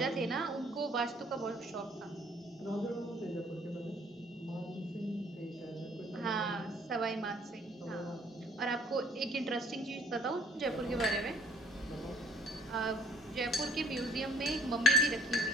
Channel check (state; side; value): normal; both; correlation 0.59